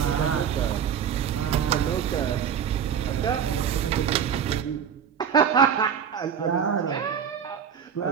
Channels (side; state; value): left; quieter; 7.9 dB